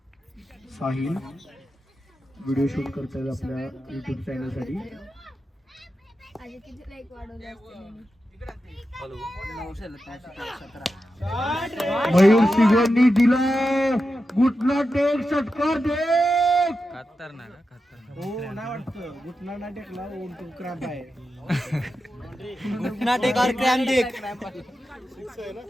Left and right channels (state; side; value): normal; both; correlation 0.90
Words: साहिल व्हिडिओ शूट करतायत आपल्या युट्यूब चॅनल साठी. मयूर सिंगांनी दिला गुटला टेक षटकार देख. हो नाही वाटतं घुटना नाही टेकला क्रॅम्प आहे. नाटेक और क्रॅम देख.